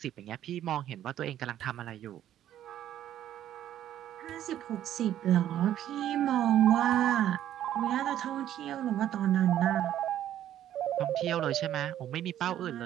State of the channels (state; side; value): quieter; left; 11.6 dB